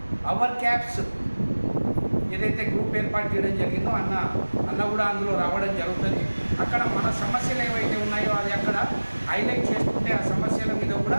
అవర్ క్యాబ్స్ ఏదైతే గ్రూప్ ఏర్పాటు చేయడం జరిగిందో అన్న కూడా అందులో రావడం జరుగుతుంది. అక్కడ మన సమస్యలు ఏవైతే ఉన్నాయో అది అక్కడ హైలైట్ చేసుకుంటే ఆ సమస్యల మీద కూడా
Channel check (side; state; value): both; inverted; correlation -1.00